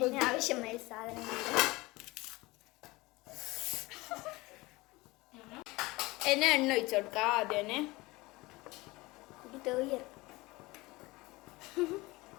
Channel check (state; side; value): quieter; right; 21.7 dB